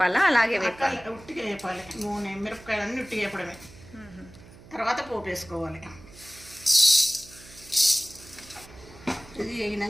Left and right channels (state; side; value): noise; right; hum, 20 dB below the sound